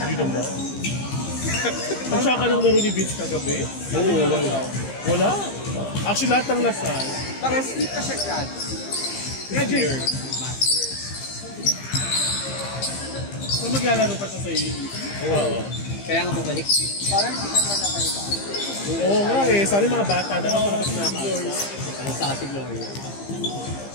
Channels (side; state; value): right; late; 15 ms